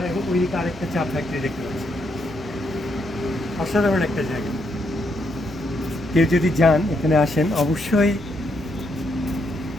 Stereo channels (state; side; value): noise; left; hum, 22 dB below the sound